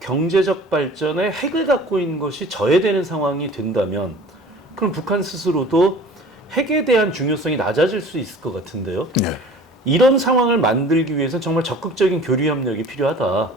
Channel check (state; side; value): normal; both; correlation 0.45